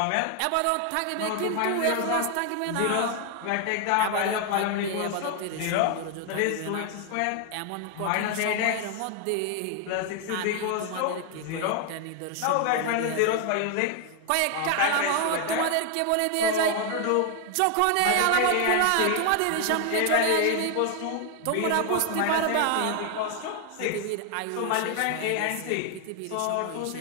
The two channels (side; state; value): both; different; correlation 0.00